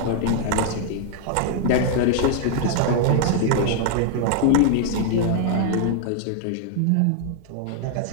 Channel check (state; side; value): different; both; correlation 0.00